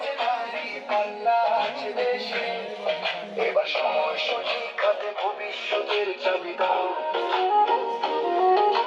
নারী পাল্লা আছে দেশে এবার সময় সঠিক হাতে ভবিষ্যতের চাবি দাও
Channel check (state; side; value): identical; both; correlation 1.00